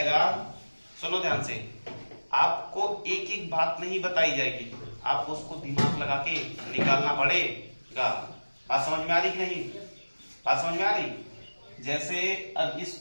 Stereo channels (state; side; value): inverted; both; correlation -1.00